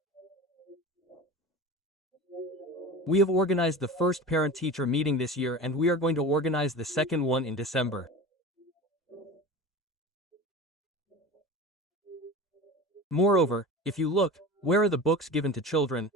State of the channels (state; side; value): normal; both; correlation 0.32